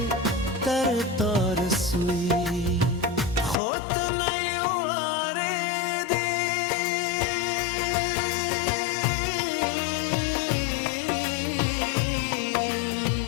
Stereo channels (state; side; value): drops out; right; at 3.6 s